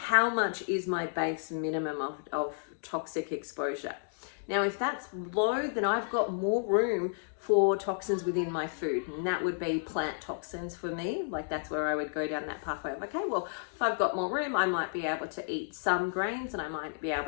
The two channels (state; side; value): silent; right; digital silence